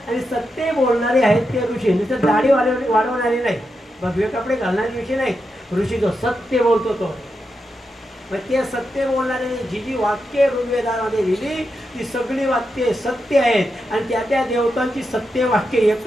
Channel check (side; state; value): both; normal; correlation 0.86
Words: आणि सत्य बोलणारे आहेत ते ऋषी. नुसतं दाढी वाढवणारे नाही, भगवे कपडे घालणारे ऋषी नाही. ऋषी जो सत्य बोलतो तो. मग ते सत्य बोलणारे जी जी वाक्य ऋग्वेदामध्ये लिहिली ती सगळी वाक्ये सत्य आहेत आणि त्या त्या देवतांची सत्य वाक्य